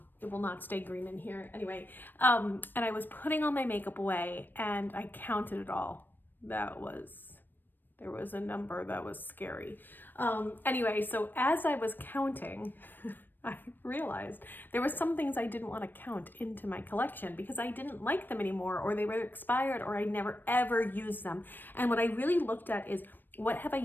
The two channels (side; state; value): right; late; 0.093 ms